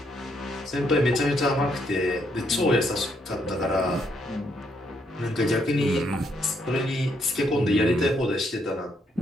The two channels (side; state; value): both; normal; correlation 0.74